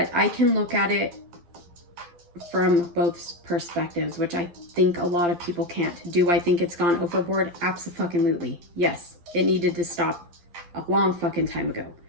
I can look at it from both perspectives, which I think a lot of people can't. Do I think it's gone overboard? Abso-fucking-lutely. Yes, it needed to stop a long fucking time ago.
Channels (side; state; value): left; late; 12 ms